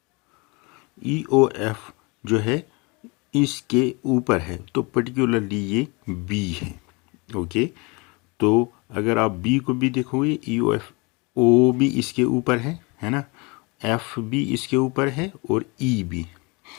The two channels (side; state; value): right; quieter; 28.2 dB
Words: ई ओ एफ जो है इसके ऊपर है, तो पर्टिकुलरली ये बी है। ओके, तो अगर आप बी को भी देखोगे, ई ओ एफ, ओ भी इसके ऊपर है ना, एफ भी इसके ऊपर है और ई भी।